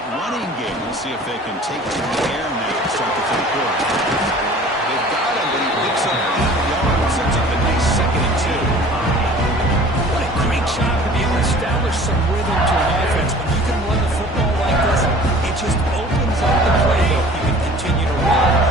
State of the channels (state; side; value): normal; both; correlation 0.46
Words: running game. We'll see if they can take to the air now to start the third quarter. They've got him, but he picks up 8 yards and sets up a nice 2nd and 2. What a great job to be able to establish some rhythm to an offense. When you can run the football like this, it just opens up the playbook. You can continue to run.